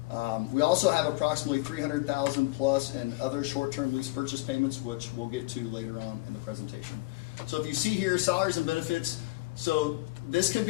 We also have approximately $300,000 plus in other short-term lease purchase payments, which we'll get to later on in the presentation. So if you see here, salaries and benefits. So this can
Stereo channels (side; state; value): right; quieter; 22.2 dB